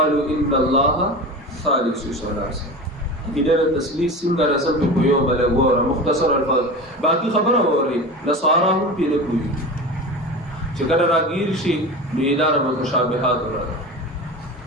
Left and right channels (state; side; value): normal; both; correlation 0.29